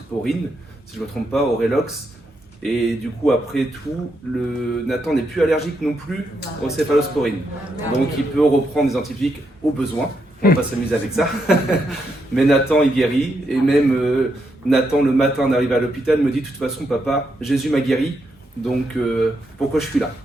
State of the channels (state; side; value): normal; both; correlation 0.81